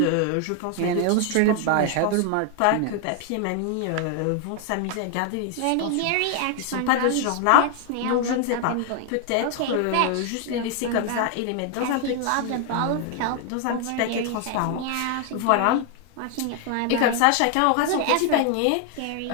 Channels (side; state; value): both; different; correlation 0.00